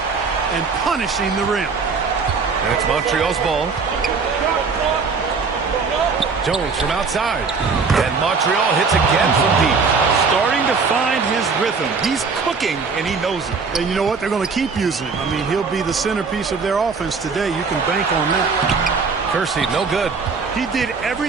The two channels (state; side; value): quieter; left; 4.9 dB